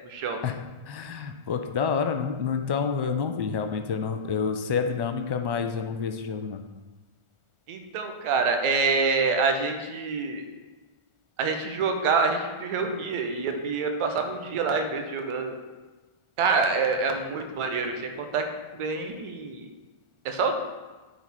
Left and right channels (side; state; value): left; late; 1.4 ms